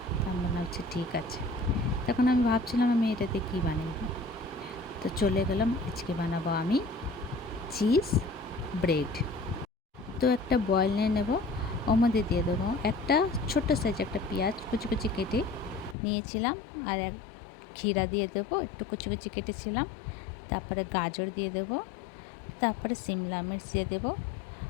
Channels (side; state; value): right; drops out; at 16.0 s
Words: তার মনে হচ্ছে ঠিক আছে। তখন আমি ভাবছিলাম আমি এটাতে কী বানিয়ে দিই, তো চলে গেলাম। আজকে বানাবো আমি চিজ ব্রেড। তো একটা বয়েল নিয়ে নেবো, ওর মধ্যে দিয়ে দেবো একটা ছোট্ট সাইজ একটা পেঁয়াজ কুচি কুচি কেটে নিয়েছিলাম, আর এক ক্ষীরা দিয়ে দেবো, একটু কুচি কুচি কেটেছিলাম। তারপরে গাজর দিয়ে দেবো, তারপরে সিমলা মির্চ দিয়ে দেবো,